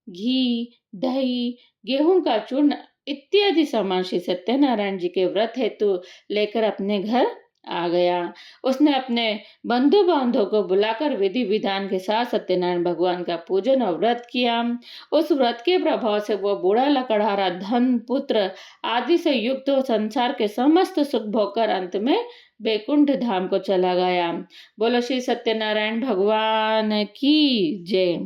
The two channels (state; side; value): identical; both; correlation 1.00